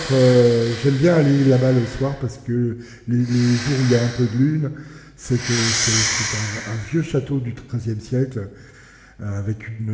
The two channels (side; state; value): both; identical; correlation 1.00